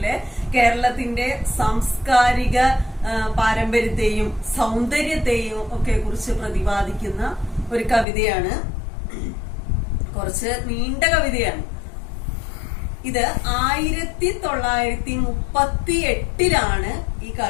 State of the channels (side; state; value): right; drops out; at 8.1 s